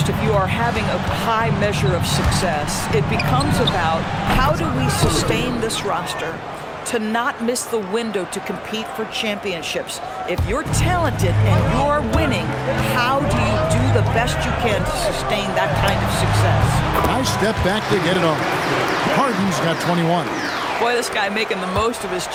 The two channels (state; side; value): identical; both; correlation 1.00